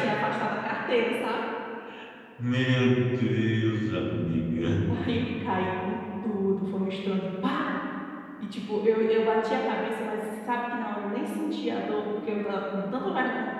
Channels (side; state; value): both; identical; correlation 1.00